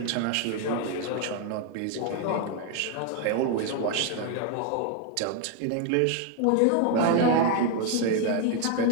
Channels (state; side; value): different; both; correlation 0.00